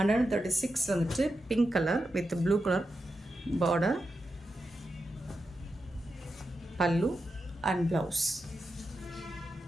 வந்துட்டு pink colour with blue colour border, பல்லு and blouse.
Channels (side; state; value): both; normal; correlation 0.88